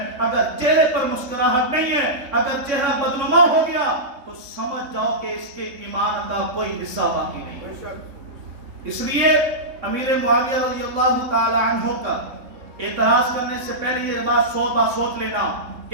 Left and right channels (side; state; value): left; late; 3.7 ms